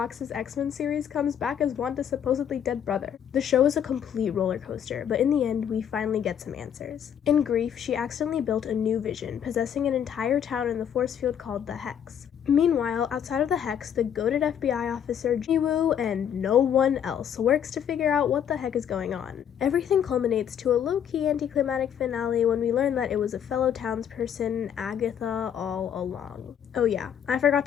X-Men series, comes back as Wanda's supposedly dead brother. The show is a complete roller coaster, but in the end, we finally get some answers. In grief, she accidentally built a new Vision, possessing an entire town in the force field called the Hex. Meanwhile, outside of the Hex, the goated FBI officer Jiwoo and no one else works to figure out what the heck is going on. Everything culminates to a low-key anticlimactic finale when we learn that it was a fellow townsperson, Agatha, all along. Oh yeah, I forgot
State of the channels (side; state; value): right; quieter; 8.9 dB